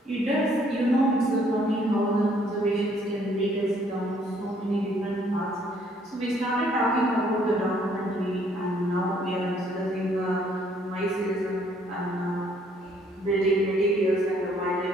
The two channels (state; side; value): normal; both; correlation 0.64